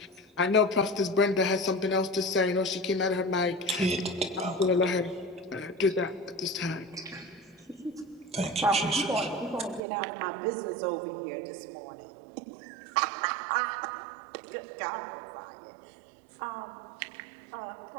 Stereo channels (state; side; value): drops out; left; at 9.8 s